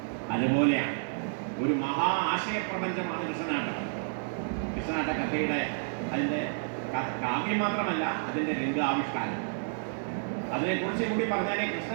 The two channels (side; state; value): left; silent; digital silence